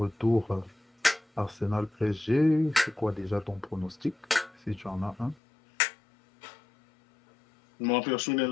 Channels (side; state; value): right; drops out; at 5.4 s